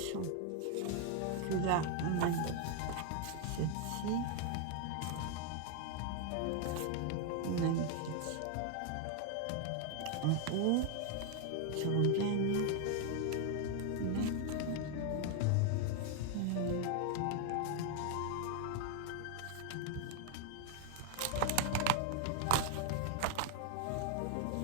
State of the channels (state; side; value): different; both; correlation 0.01